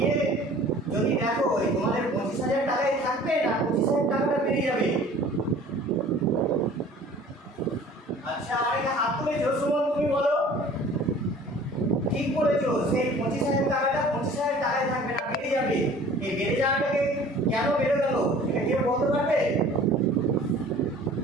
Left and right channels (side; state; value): both; normal; correlation 0.48